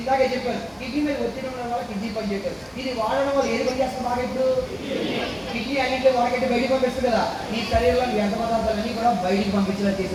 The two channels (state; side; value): identical; both; correlation 1.00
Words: చెప్పారు, కిడ్నీ మీద ఒత్తిడి ఉండడం వల్ల కిడ్నీ పని చేయగలరు. ఇది వాడడం వల్ల ఏది పని చేస్తుంది బాగా? ఇప్పుడు కిడ్నీ అన్నింటిలో వాడకంటే బయటికి పంపిస్తుంది కదా. నీ శరీరంలో వ్యర్థ పదార్థాలన్నీ కూడా బయటికి పంపించేలా